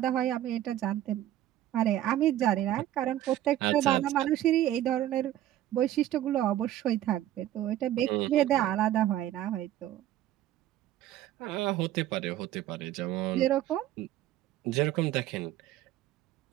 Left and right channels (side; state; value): left; quieter; 13.2 dB